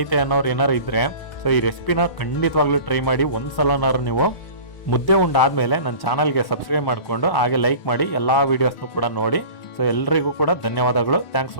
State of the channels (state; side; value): late; right; 1.0 ms